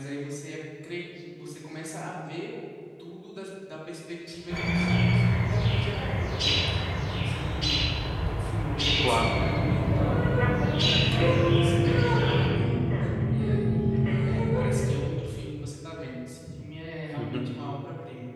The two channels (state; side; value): identical; both; correlation 1.00